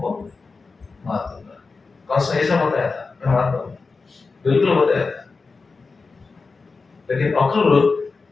को मार दूंगा। कंस ने ऐसा बताया था, मैं मार दूंगा, बिल्कुल बताया था। लेकिन अक्रूर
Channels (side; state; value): right; quieter; 4.3 dB